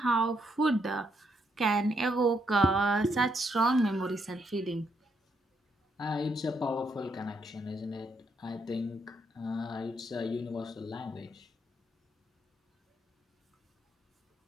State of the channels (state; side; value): normal; both; correlation 0.76